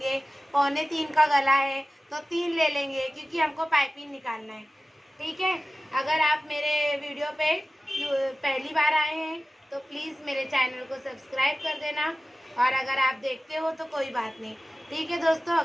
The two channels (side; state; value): both; normal; correlation 0.96